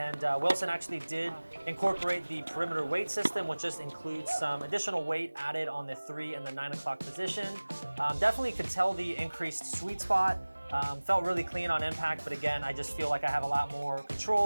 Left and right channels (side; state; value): both; inverted; correlation -1.00